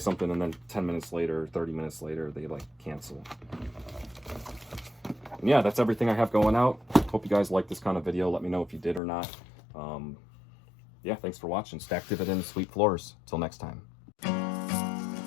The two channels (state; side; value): drops out; right; at 9.0 s